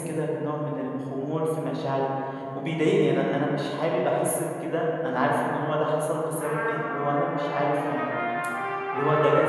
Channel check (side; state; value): both; identical; correlation 1.00